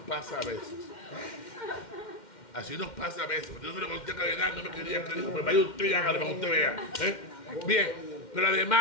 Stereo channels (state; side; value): late; right; 2.1 ms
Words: a veces. Así nos pasa a veces. Yo se lo conté a Cardenal, no me quería creer. Pues vaya usted y hágalo para que usted vea. Bien, pero